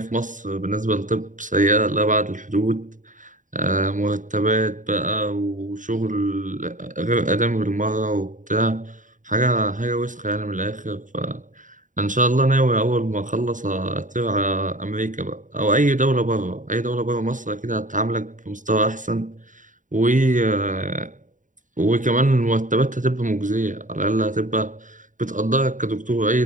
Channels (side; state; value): left; late; 0.37 ms